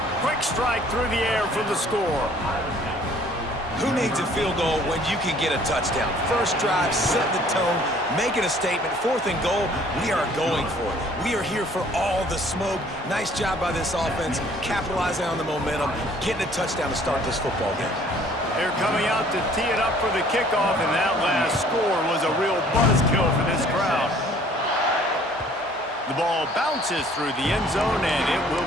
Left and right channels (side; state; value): both; normal; correlation 0.56